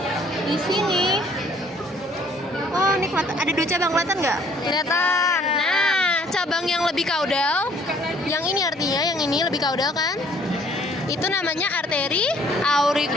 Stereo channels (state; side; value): normal; both; correlation 0.60